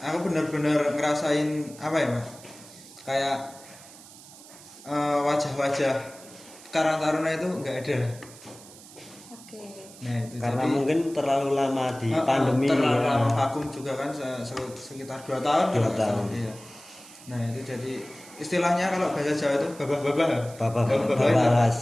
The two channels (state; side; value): noise; right; hiss, 19 dB below the sound